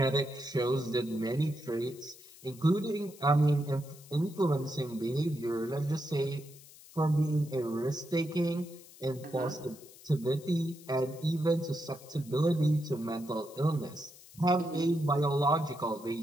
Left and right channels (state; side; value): noise; left; hiss, 21 dB below the sound